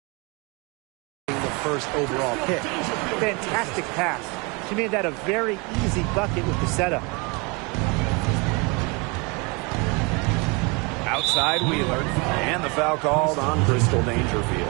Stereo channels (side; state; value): left; quieter; 29.4 dB